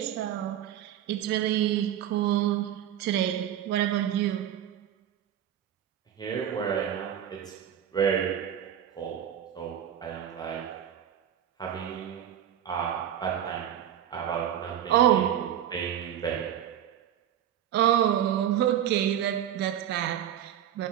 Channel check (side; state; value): left; quieter; 10.5 dB